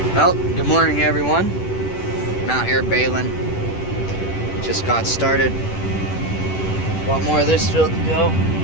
Well, good morning everyone. I'm out here baling. Just got started. A lot more of this field to go.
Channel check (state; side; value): late; right; 10 ms